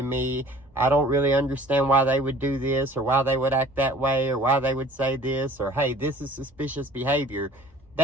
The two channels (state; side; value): normal; both; correlation 0.49